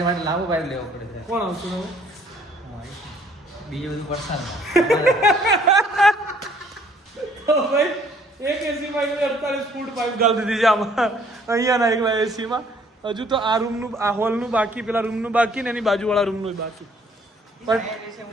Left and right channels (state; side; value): normal; both; correlation 0.60